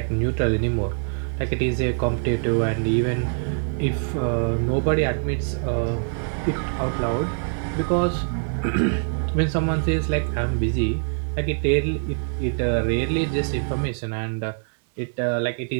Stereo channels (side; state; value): left; silent; 63 dB below the other